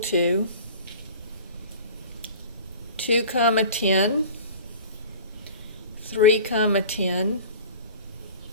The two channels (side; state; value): both; inverted; correlation -0.40